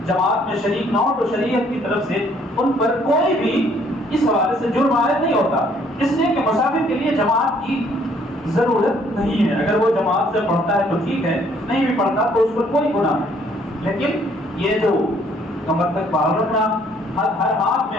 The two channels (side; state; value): both; normal; correlation 0.63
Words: جماعت میں شریک نہ ہو تو شریعت کی طرف سے ان پر کوئی بھی اس حوالے سے جرم عائد نہیں ہوتا, اس لیے کہ مسافر کے لیے جماعت کی ضرورت نہیں ہے. اگر وہ جماعت سے پڑھتا ہے تو ٹھیک ہے, نہیں بھی پڑھتا تو اس پر کوئی گناہ نہیں. لیکن یہ جو کمر تک باہر رکھنا, ہر ہاتھ